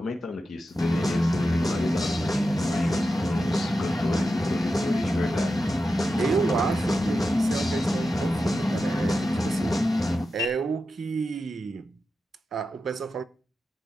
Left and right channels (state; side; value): normal; both; correlation 0.90